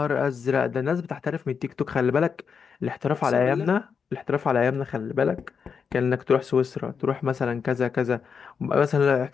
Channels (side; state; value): right; quieter; 6.3 dB